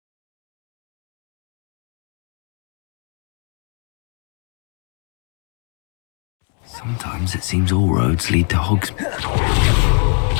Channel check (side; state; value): right; quieter; 37.8 dB